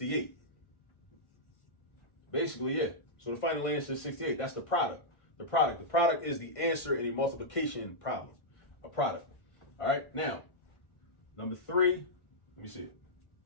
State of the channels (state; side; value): late; right; 1.6 ms